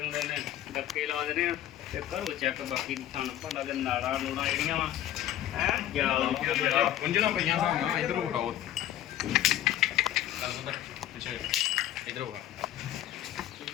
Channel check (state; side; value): quieter; right; 12.4 dB